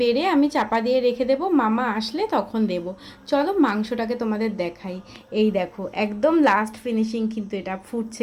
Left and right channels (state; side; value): identical; both; correlation 1.00